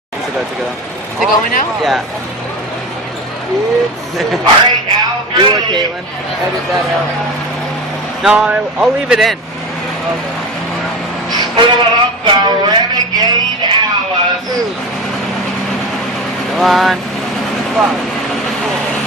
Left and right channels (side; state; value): both; normal; correlation 0.28